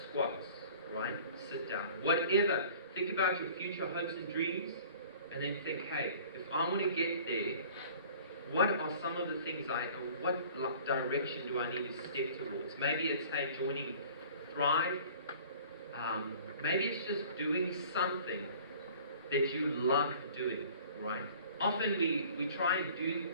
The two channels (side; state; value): both; inverted; correlation -0.48